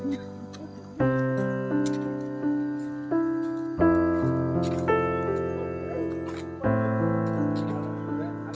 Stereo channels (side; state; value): both; identical; correlation 1.00